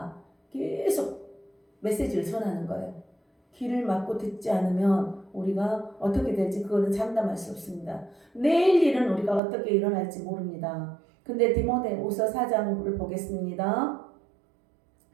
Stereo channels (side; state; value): left; drops out; at 9.4 s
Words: 계속 메시지를 전하는 거예요. 귀를 막고 듣지 않으면 우리가 어떻게 될지 그거는 장담할 수 없습니다. 내일 일은 우리가 어떻게 일어날지 모릅니다. 근데 디모데후서 4장을 보겠습니다.